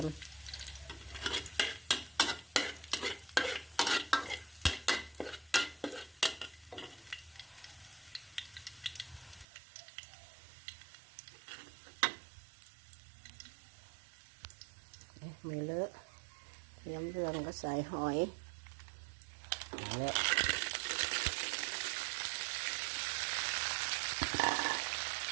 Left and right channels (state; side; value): drops out; left; at 9.5 s